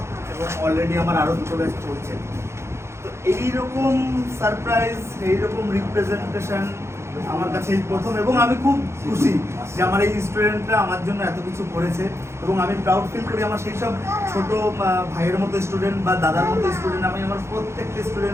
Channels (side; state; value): left; late; 0.13 ms